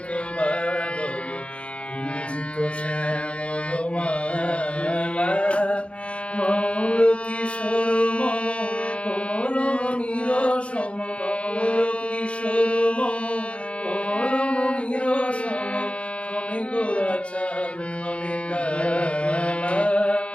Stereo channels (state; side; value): late; right; 0.060 ms